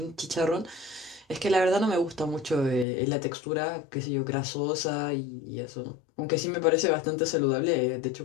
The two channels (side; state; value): right; drops out; at 2.9 s